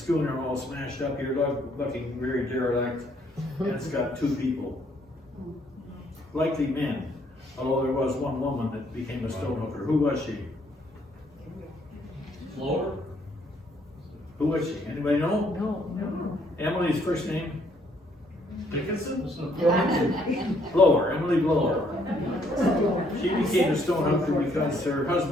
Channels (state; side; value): normal; both; correlation 0.68